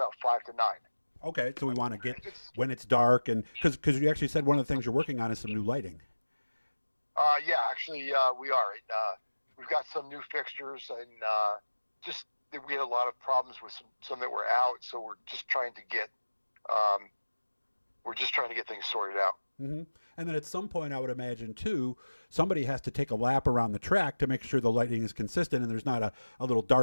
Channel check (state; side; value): inverted; both; correlation -1.00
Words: 5 to 9. Okay. So we want to get when it's dark, and because you actually said one of the things you're working on is some new lighting. Yeah, actually, we are. We've got some new fixtures, and we had a lot of problems with some that were out, so we're just trying to get things sorted out. Mm-hmm. And then at some point, I would imagine, too, somebody has to take a lap around the track to make sure the lighting is consistent and there's not a little